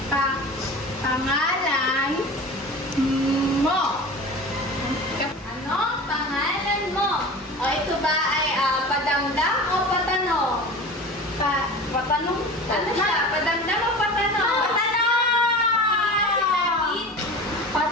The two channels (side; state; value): both; normal; correlation 0.35